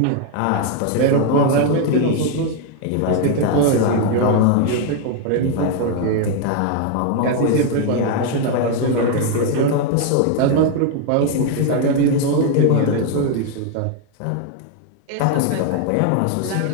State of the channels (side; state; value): both; different; correlation 0.01